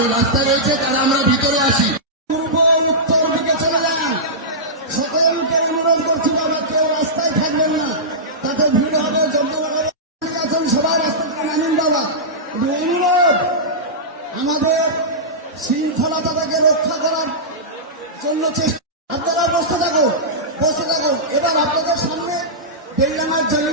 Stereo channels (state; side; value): normal; both; correlation -0.15